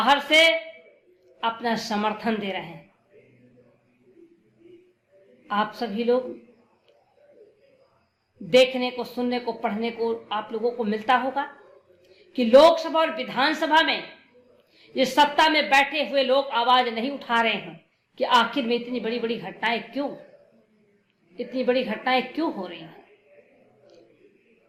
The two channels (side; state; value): both; identical; correlation 1.00